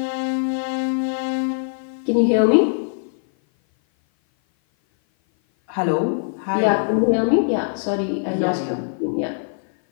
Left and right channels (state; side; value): silent; right; 57 dB below the other